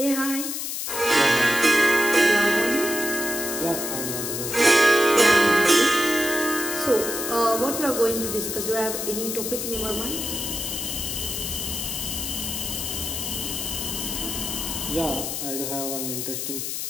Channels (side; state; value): left; noise; hiss, 4 dB below the sound